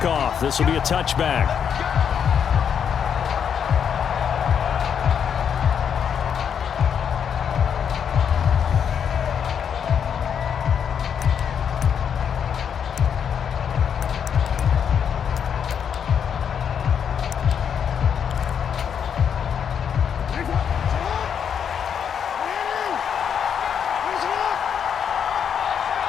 This will be a touchback.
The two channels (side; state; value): right; quieter; 7.7 dB